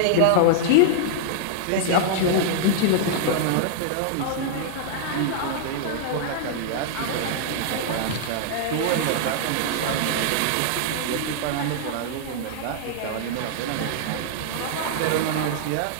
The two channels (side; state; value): both; different; correlation -0.01